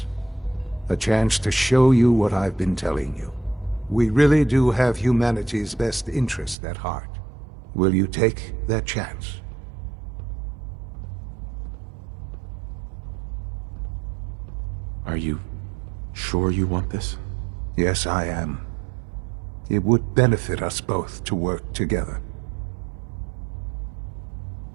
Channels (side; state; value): left; drops out; at 6.6 s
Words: A chance to show you what I've been telling you. We really do have humanity's best interest at heart. Will you take that chance? Are you sure you want this? Yes, I am. It would benefit us both to work together.